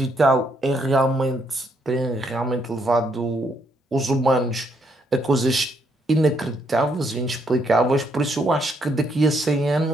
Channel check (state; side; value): normal; both; correlation 0.73